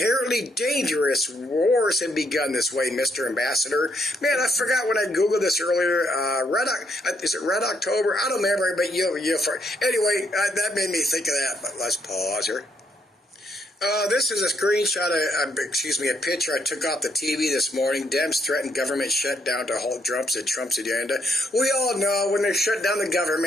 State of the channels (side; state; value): both; normal; correlation 0.73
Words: dangerous. Wars have begun this way, Mr. Ambassador. Man, I forgot when I Googled this earlier. Is it Red October? I don't remember, but anyway, that made me think of that. But let's pause here. This is a screenshot, a picture I took off the TV this morning. Dems threaten government shutdown to halt Trump's agenda. We all know when they shut down the